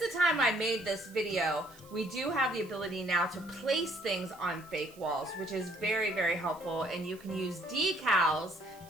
time I made this video, we do have the ability now to place things on fake walls, which is very, very helpful. And you can use decals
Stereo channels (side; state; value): right; noise; hiss, 24 dB below the sound